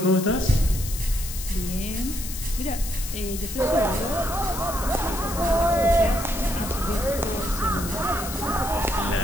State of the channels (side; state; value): left; noise; hiss, 9 dB below the sound